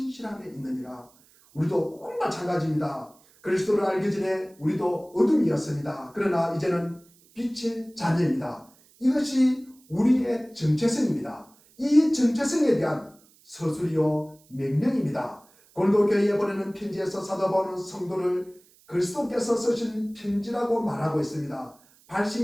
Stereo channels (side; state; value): right; noise; hiss, 29 dB below the sound